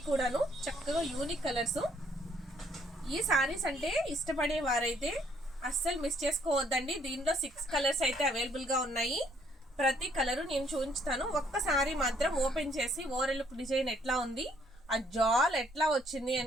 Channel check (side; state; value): both; normal; correlation 0.66